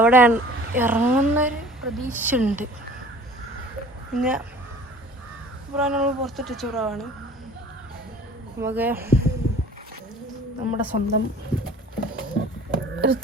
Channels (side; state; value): both; normal; correlation 0.47